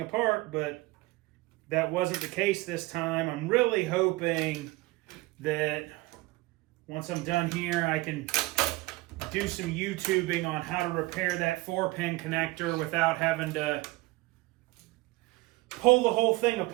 apart, but that wasn't the case this time. I'm really hoping that once I'm done here, I can do some YouTubing on how to repair that 4-pin connector without having to pull the whole thing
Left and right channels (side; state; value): left; quieter; 20.8 dB